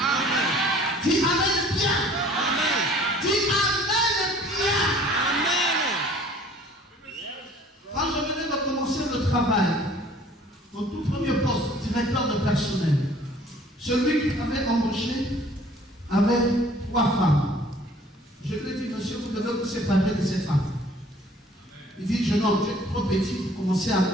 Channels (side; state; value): both; normal; correlation 0.53